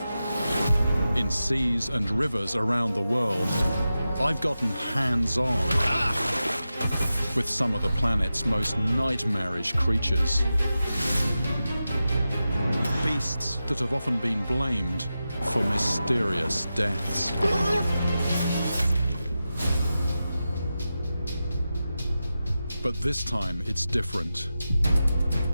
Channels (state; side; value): inverted; both; correlation -0.92